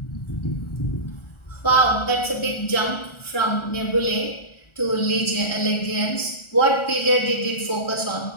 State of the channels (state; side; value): late; right; 1.4 ms